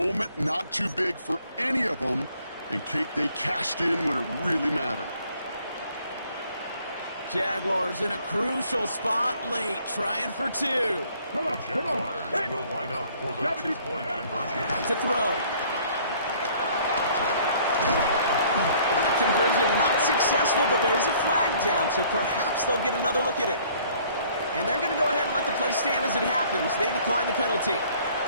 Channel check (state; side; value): inverted; both; correlation -0.58